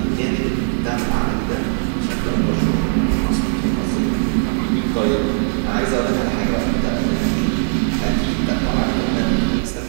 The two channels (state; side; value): silent; left; 66 dB below the other